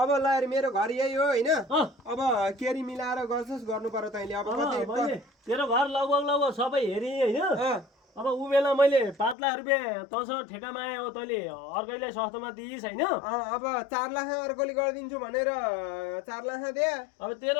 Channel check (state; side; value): drops out; right; at 9.3 s